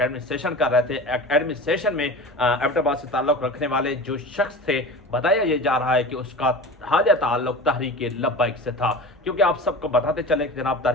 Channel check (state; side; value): normal; both; correlation 0.34